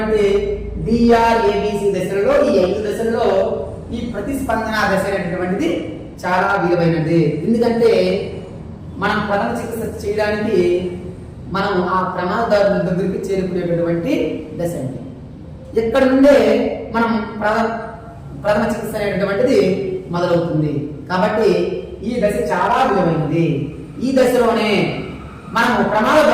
డిఆర్ఏబిసి దశలలో ఈ 5 దశలలో ఈ ప్రతిస్పందన దశ అనేటటువంటిది చాలా విలువైనది. ఎందుకంటే మనం ప్రథమ చికిత్స చేయడానికి మనం ఆ ప్రమాదదారుల దగ్గరికి చేరుకునేటటువంటి దశ అండి. ఇక్కడ నుండే మనం ప్రథమ చికిత్స అనేటటువంటిది మొదలవుతుంది. కాబట్టి ఈ దశ చాలా విలువైనది. ఈ దశలోనే మనము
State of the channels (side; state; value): both; identical; correlation 1.00